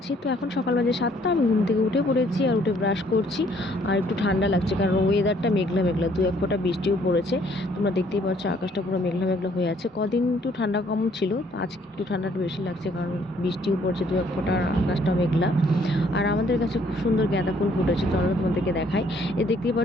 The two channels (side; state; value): both; normal; correlation 0.63